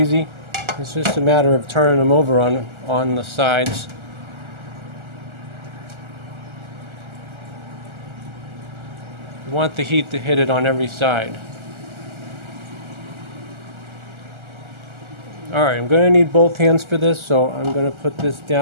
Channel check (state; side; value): late; left; 1.4 ms